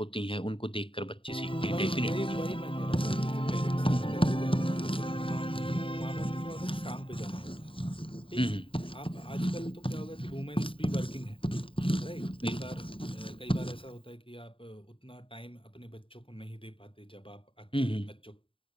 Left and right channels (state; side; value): late; right; 0.25 ms